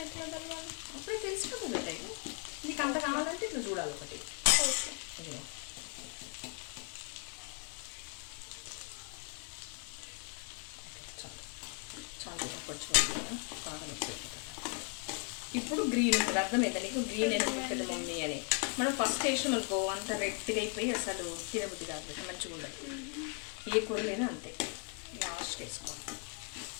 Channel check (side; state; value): right; quieter; 37.7 dB